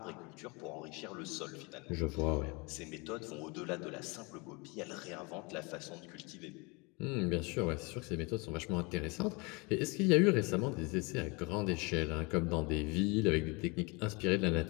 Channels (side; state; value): right; quieter; 28.4 dB